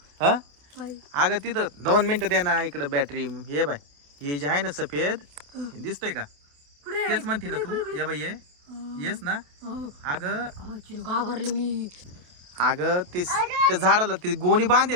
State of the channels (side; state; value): left; late; 28 ms